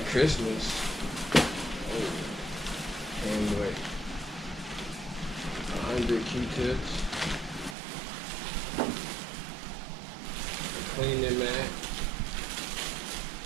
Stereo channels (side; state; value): left; drops out; at 7.8 s